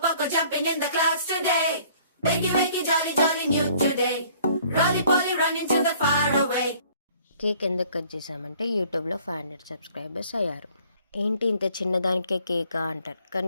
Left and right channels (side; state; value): both; inverted; correlation -0.56